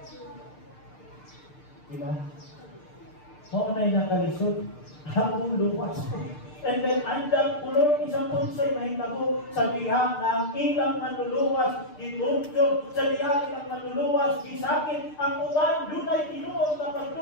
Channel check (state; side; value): late; right; 6.7 ms